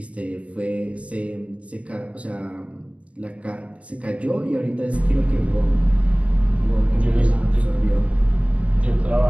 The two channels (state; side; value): late; left; 0.064 ms